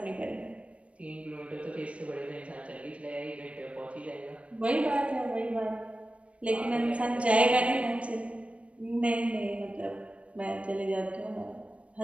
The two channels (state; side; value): late; left; 0.062 ms